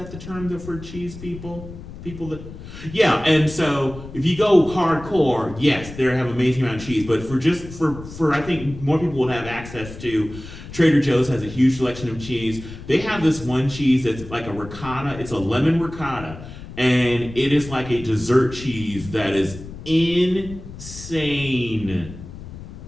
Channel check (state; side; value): noise; left; rumble, 13 dB below the sound